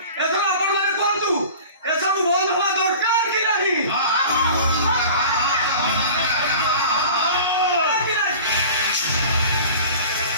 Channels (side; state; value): both; inverted; correlation -0.40